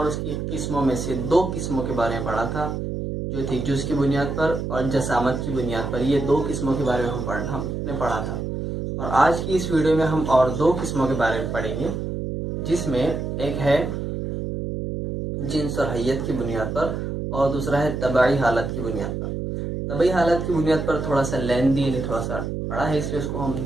उसकी किस्मों में से दो किस्मों के बारे में पढ़ा था, जो थी जुज़ की बुनियाद पर और जसामत की बुनियाद पर। ये दो किस्मों के बारे में हमने पढ़ा था और आज की इस वीडियो में हम और दो किस्मों के बारे में पढ़ेंगे, जिसमें एक है जिन्स और हैयत की बुनियाद पर और दूसरा है तबाई हालत की बुनियाद पर। तबाई हालत की बुनियाद पर थोड़ा सा लेंदी यानी थोड़ा सा बड़ा है, इसलिए उसको हम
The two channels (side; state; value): right; noise; hum, 4 dB below the sound